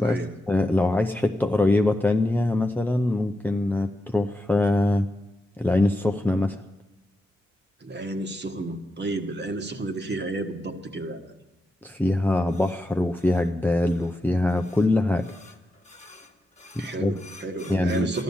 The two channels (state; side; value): normal; both; correlation 0.87